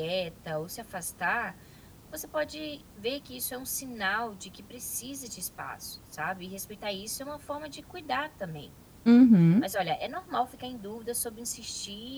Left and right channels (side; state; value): both; identical; correlation 1.00